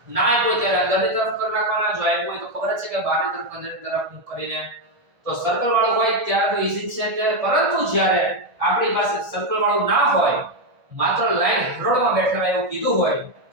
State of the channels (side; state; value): left; late; 2.4 ms